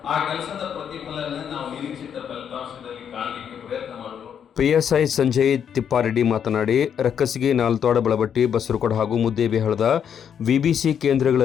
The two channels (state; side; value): quieter; right; 8.2 dB